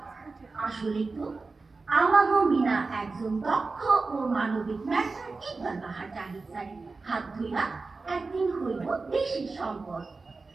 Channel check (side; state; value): left; quieter; 3.9 dB